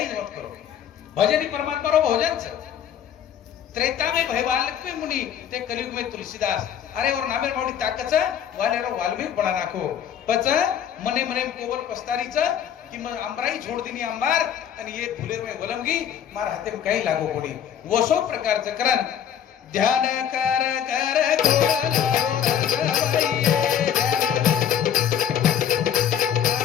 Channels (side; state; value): right; quieter; 9.3 dB